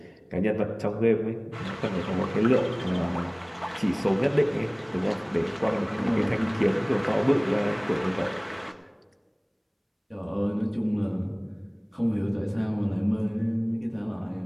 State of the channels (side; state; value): both; identical; correlation 1.00